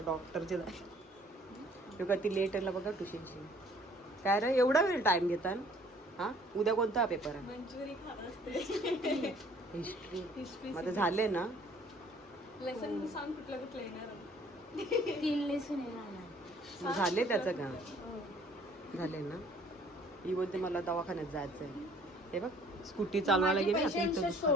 डॉक्टरचे जायचं. का ती लेट आला बघा ट्युशनची. काय रे एवढा वेळ टाईम घेतात? हां उद्या कोणता पेपर आहे? मंचुरी खात असते. हिस्ट्री. मग झाले ना लेसन सांग कुठलं कुठलं येणार. 3 लेसन येणार. मग झाले त्याचं का? झाले ना. ही बोलते मला दवाखान्यात जायचं आहे. हे बघ स्कूटी चालवायला गेली आता इथं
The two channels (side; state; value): both; normal; correlation 0.57